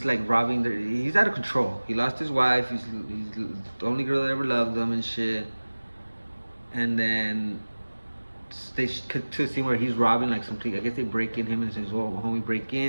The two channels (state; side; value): inverted; both; correlation -1.00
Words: like robbing he's out of control. He lost his wife. He's the only girl that ever loved him and shit. And then they cut to a scene where he's robbing like something. I guess they break in him and says, "Well, homie, break